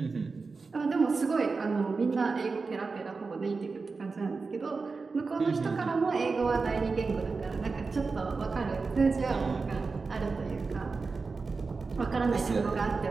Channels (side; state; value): left; quieter; 4.3 dB